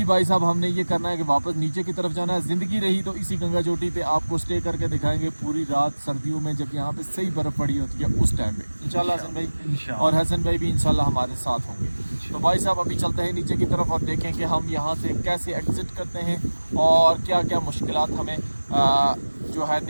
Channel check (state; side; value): inverted; both; correlation -1.00